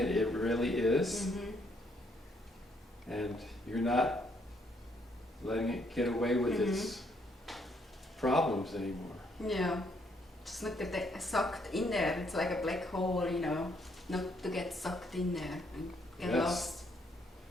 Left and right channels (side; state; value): both; normal; correlation 0.71